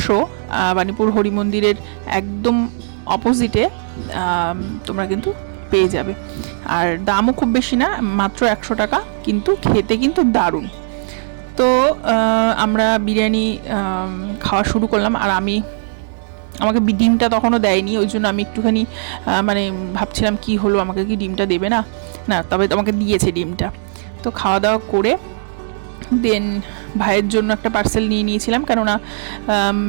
বাণীপুর হরি মন্দিরের একদম অপোজিটে তোমরা কিন্তু পেয়ে যাবে। আর দামও খুব বেশি না, মাত্র 100 টাকা, কিন্তু খেতে কিন্তু দারুণ। তো আমরা বিরিয়ানি খাওয়া শুরু করলাম, আর আমাকে ডিমটা তখনও দেয়নি, ওই জন্য আমি একটুখানি মানে ভাবছিলাম কি হলো, আমাকে কি ডিমটা দেবে না, তবে আমাকে দিয়েছে ডিমটা। তো খাওয়া দাওয়া করে দেন ভাইয়ের জন্য একটা পার্সেল নিয়ে নিয়েছিলাম, কেননা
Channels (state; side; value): silent; left; digital silence